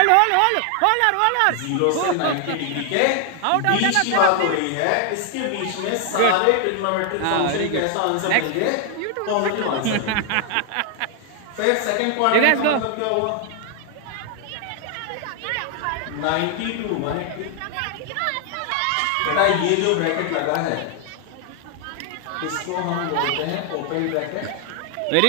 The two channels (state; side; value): different; both; correlation 0.00